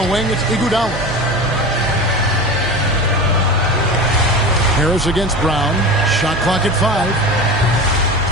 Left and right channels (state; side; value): noise; right; hum, 11 dB below the sound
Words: wing, it's Iguodala. Harris against Brown. Shot clock at 5.